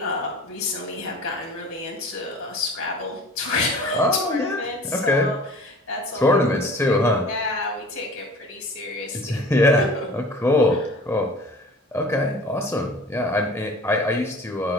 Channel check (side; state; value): both; normal; correlation 0.44